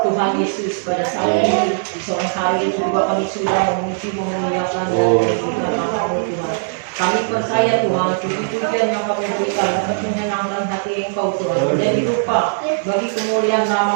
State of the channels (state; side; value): silent; left; digital silence